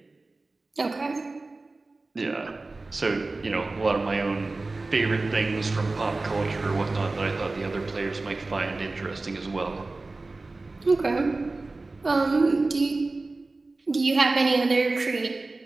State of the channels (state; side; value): quieter; left; 3.4 dB